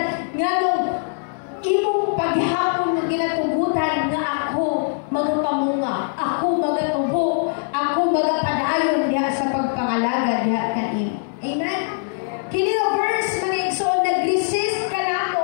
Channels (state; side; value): silent; right; digital silence